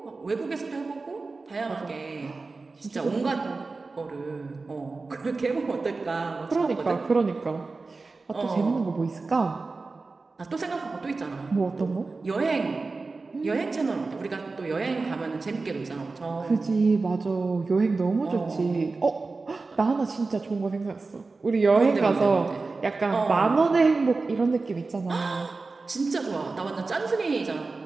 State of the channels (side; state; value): left; quieter; 3.8 dB